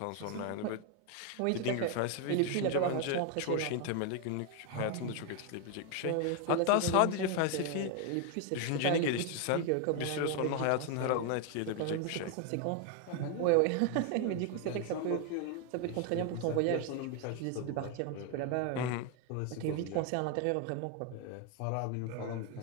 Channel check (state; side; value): different; both; correlation 0.01